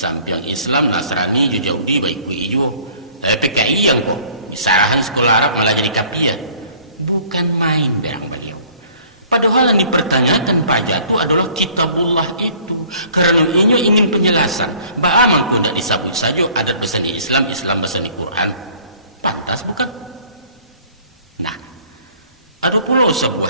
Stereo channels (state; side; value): inverted; both; correlation -0.54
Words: Islam, Nasrani, Yahudi baik ku ijo. PKI yang kok disarahan sekolah Arab malah jadi kapia. Bukan main berang beliau. Padahal yang dipertanyakan Pak Jatuh adalah kitabullah itu. Karena ini ingin penjelasan. Bagaimana kau tidak disabut saja adat bahasa di Islam, Islam bahasa di Quran. Pantas bukan? Nah, ada pula